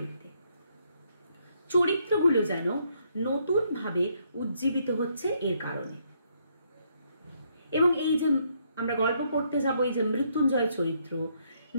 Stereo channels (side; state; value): both; inverted; correlation -0.73